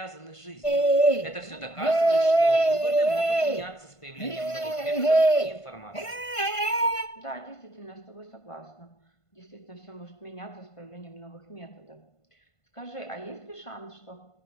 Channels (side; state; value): right; late; 1.5 ms